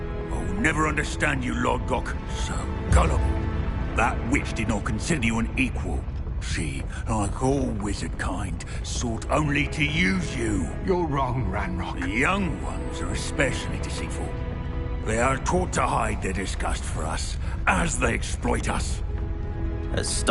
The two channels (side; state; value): both; identical; correlation 1.00